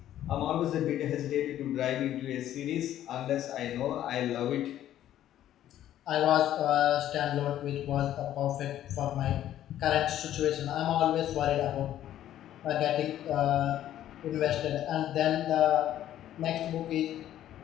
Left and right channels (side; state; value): right; quieter; 12.0 dB